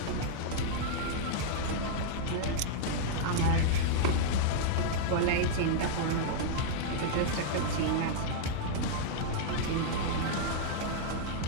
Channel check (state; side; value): different; both; correlation -0.01